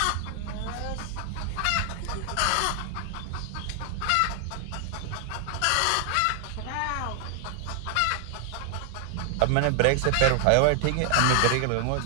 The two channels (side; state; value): both; different; correlation 0.00